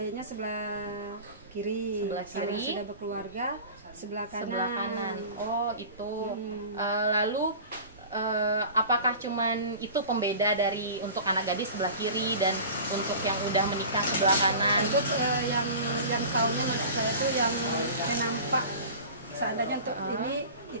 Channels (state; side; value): inverted; both; correlation -0.37